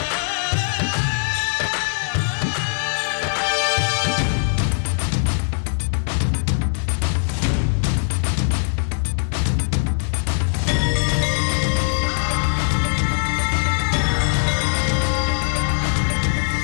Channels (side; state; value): right; silent; digital silence